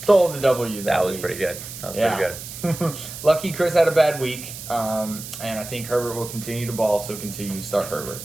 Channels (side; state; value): right; noise; hiss, 11 dB below the sound